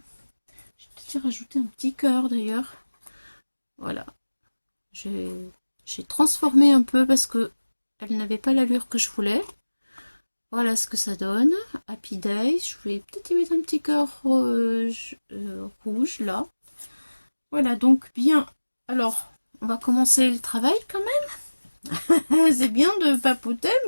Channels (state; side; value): inverted; both; correlation -1.00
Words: peut-être rajouté un petit cœur d'ailleurs. Voilà, j'ai transformé un peu parce que elle n'avait pas l'allure que je voulais. Voilà ce que ça donne. Happy Day. Je vais peut-être y mettre un petit cœur rouge là. Voilà, donc bien. Alors, on va commencer le travail quand même. C'est bien de papoter,